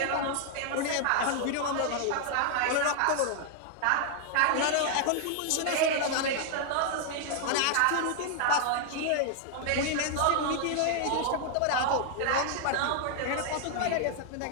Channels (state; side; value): different; both; correlation 0.00